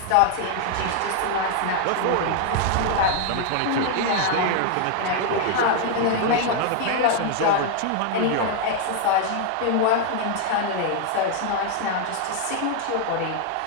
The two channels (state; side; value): different; both; correlation 0.00